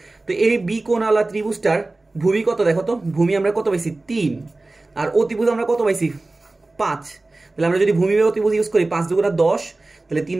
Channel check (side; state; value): left; quieter; 3.1 dB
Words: তো এই বি কোণওয়ালা ত্রিভুজটার ভূমি কত দেখো তো, ভূমি আমরা কত পাইছি 3 আর অতিভুজ আমরা কত পাইছি 5। তাহলে আমরা যদি ভূমি বাই অতিভুজ ইউজ করি 5 দুগুণা 10, তাহলে 3